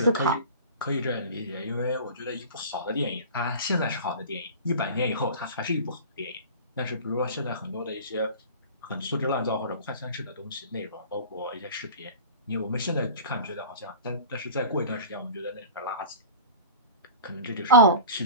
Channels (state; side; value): inverted; both; correlation -0.36